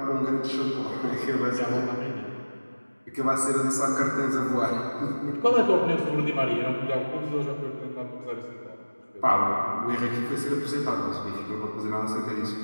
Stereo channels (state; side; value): inverted; both; correlation -1.00